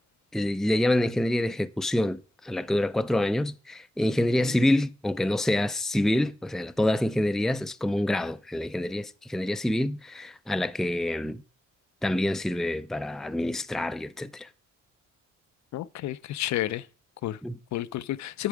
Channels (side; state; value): both; normal; correlation 0.89